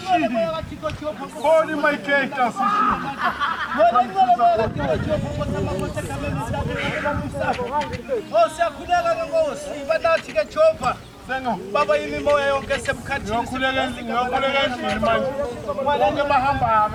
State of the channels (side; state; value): both; identical; correlation 1.00